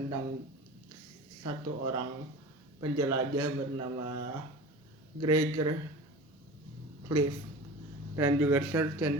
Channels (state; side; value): normal; both; correlation 0.35